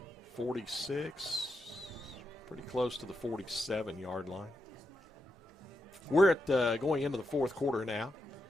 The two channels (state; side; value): normal; both; correlation 0.85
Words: 46, pretty close to the 47-yard line. We're at going into the fourth quarter now.